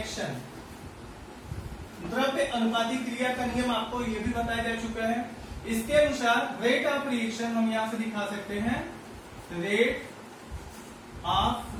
द्रव्य अनुपाती क्रिया का नियम आपको ये भी बताया जा चुका है। इसके अनुसार रेट ऑफ रिएक्शन हम यहां से दिखा सकते हैं, रेट ऑफ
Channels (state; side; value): identical; both; correlation 1.00